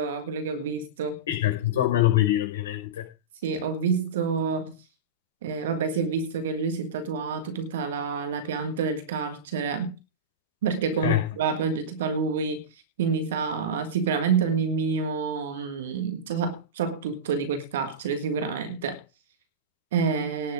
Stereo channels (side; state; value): both; normal; correlation -0.16